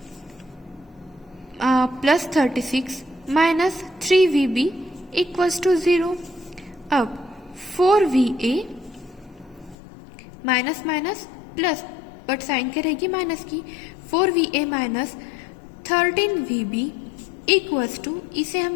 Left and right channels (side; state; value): right; drops out; at 9.8 s